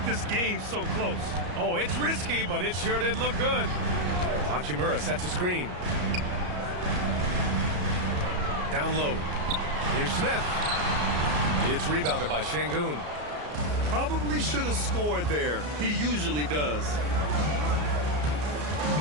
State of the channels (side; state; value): left; late; 34 ms